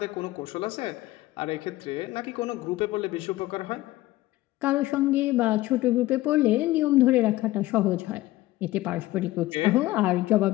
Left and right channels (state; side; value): quieter; right; 17.4 dB